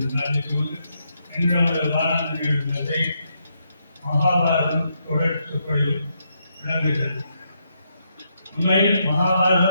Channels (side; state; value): both; inverted; correlation -0.79